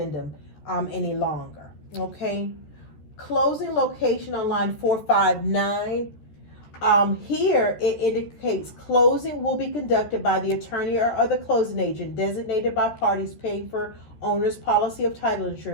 any longer. Okay. Closing location on line 459. Here it indicates closing will be conducted by the attorney or other closing agent designated by parties paying for owner's policy of title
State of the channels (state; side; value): late; right; 14 ms